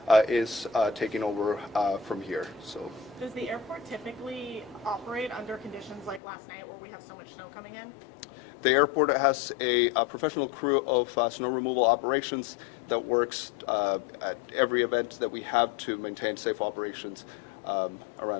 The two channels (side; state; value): right; drops out; at 6.2 s